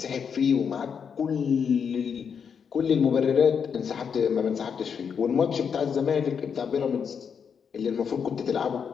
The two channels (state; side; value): quieter; right; 6.8 dB